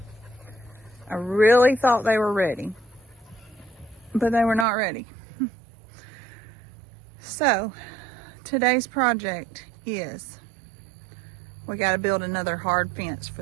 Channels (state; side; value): drops out; left; at 4.7 s